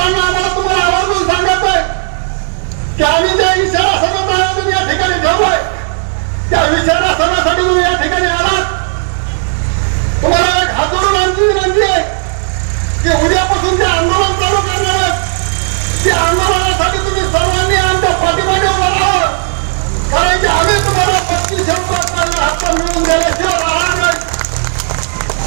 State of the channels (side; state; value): left; silent; digital silence